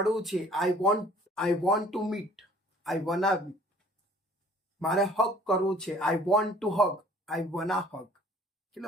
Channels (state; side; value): normal; both; correlation 0.54